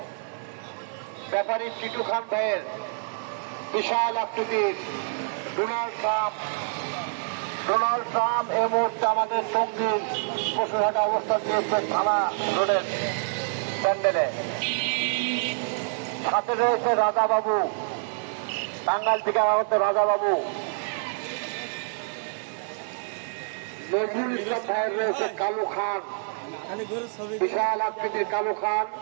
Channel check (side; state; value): left; silent; digital silence